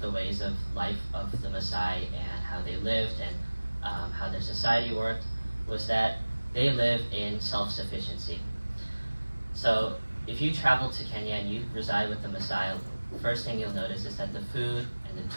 ways of life of the Maasai and how they lived and how their society worked was that they live in self-sufficiency. So if you travel to Kenya and you reside with the Maasai, the first thing you'll notice is that the food and the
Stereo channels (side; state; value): both; inverted; correlation -1.00